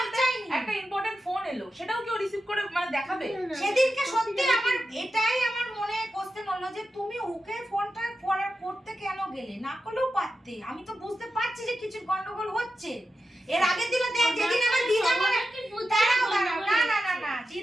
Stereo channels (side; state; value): both; normal; correlation 0.91